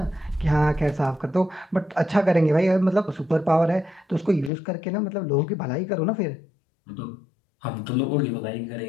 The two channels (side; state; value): right; drops out; at 4.5 s